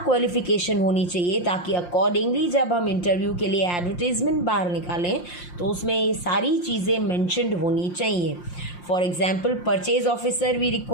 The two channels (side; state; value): right; late; 5.7 ms